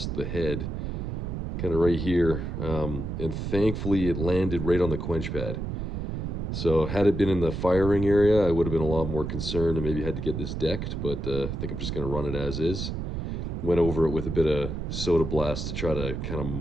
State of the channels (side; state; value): right; noise; rumble, 4 dB below the sound